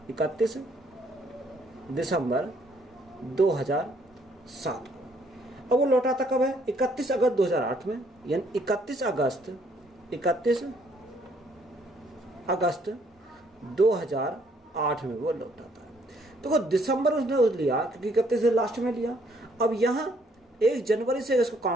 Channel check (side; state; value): both; normal; correlation 0.66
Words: 2007 को। अब वो लौटाता कब है, 31 अगस्त 2008 में, यानी 31 अगस्त 2008 में वो लौटाता है। तो वो दिसंबर उसने लिया क्योंकि 31 से लास्ट में लिया। अब यहाँ 1 जनवरी से इसको